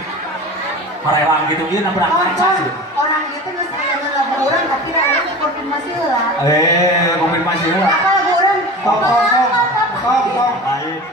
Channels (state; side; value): normal; both; correlation 0.34